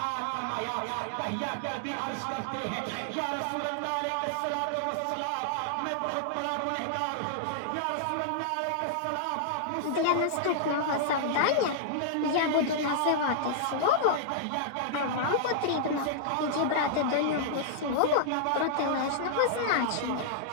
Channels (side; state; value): both; different; correlation -0.01